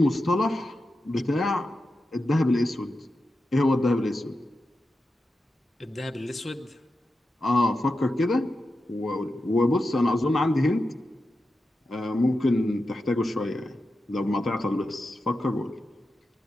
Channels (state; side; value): normal; both; correlation 0.90